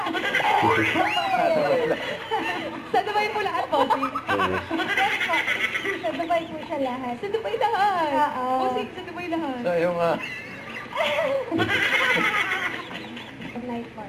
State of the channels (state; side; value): identical; both; correlation 1.00